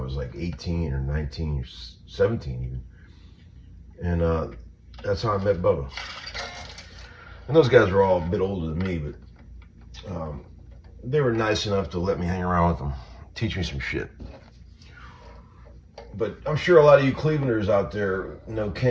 like 18 or 19 or 17 even. And that's how I met Bubba. And those guys were all a bit older than me, but they were nice enough to let me hang around with them, teach me some shit. But I'm sure a lot of you Clevelanders out there know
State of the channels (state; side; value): identical; both; correlation 1.00